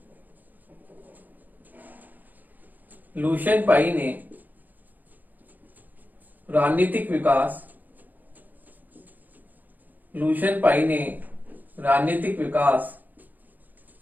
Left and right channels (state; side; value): late; left; 0.084 ms